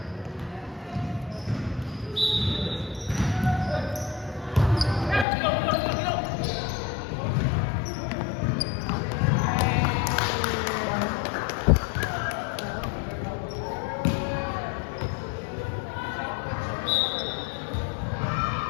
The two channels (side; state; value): right; drops out; at 5.2 s